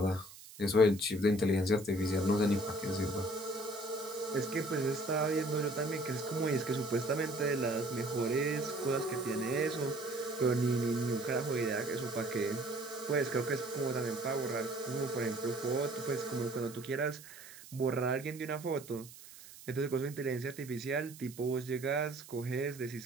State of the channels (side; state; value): right; noise; hiss, 17 dB below the sound